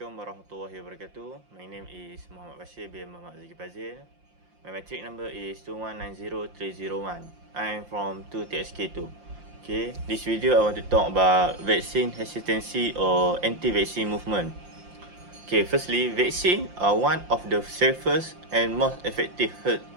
warahmatullahi wabarakatuh. My name is Muhammad Bashir bin Muhammad Zaki Fazil. My matric number is 2190301. I'm from 2TSK2. Okay, this video I want to talk about vaccine hesitancy or anti-vaccine movement. Okay, firstly, vaccine are one of the safest and most effective health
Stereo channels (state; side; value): late; left; 5.7 ms